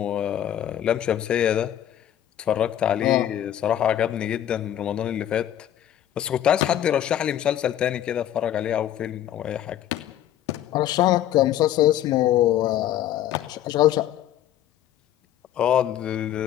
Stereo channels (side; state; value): right; quieter; 11.6 dB